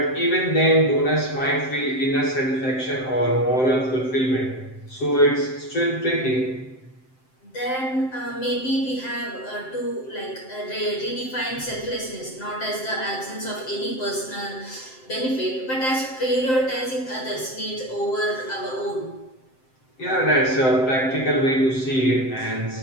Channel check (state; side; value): late; right; 7.7 ms